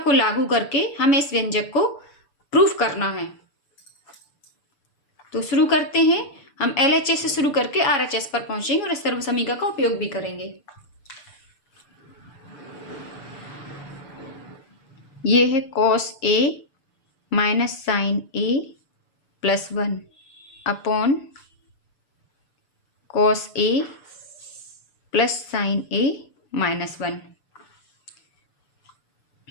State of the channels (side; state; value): right; late; 6.9 ms